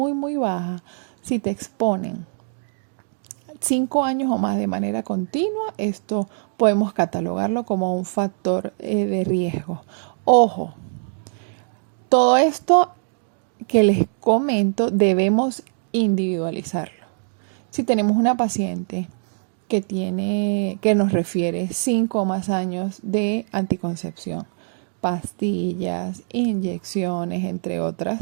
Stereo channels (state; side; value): silent; left; digital silence